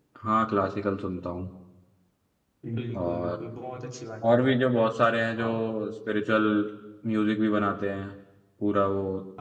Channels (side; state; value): both; identical; correlation 1.00